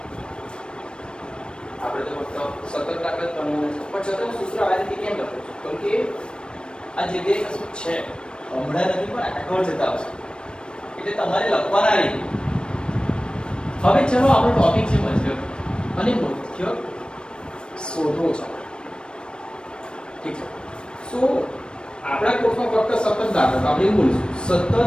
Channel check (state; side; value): late; right; 0.054 ms